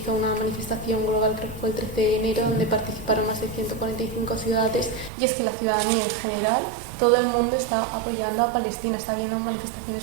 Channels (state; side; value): drops out; left; at 5.1 s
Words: una manifestación global, creo que fue el 13 de enero, donde participaron más de 145 ciudades, y es que la ciudadanía en general, todo el mundo está apoyando a Palestina, está habiendo